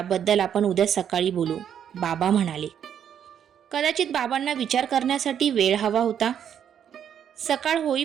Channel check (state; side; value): quieter; left; 8.9 dB